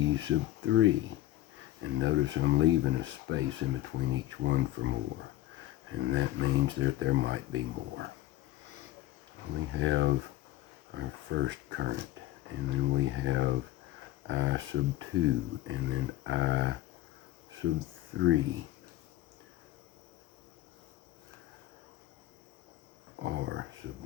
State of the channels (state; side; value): quieter; right; 15.1 dB